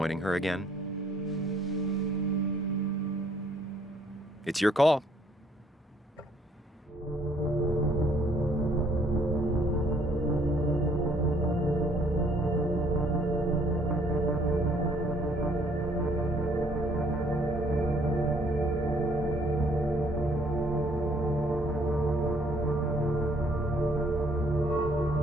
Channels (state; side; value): normal; both; correlation 0.63